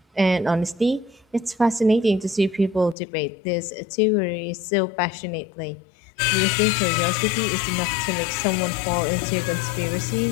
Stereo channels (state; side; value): drops out; right; at 3.0 s